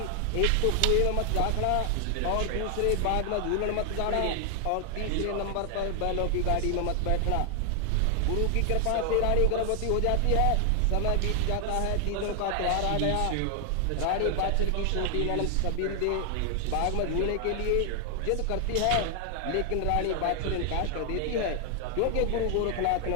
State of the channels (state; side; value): different; both; correlation 0.00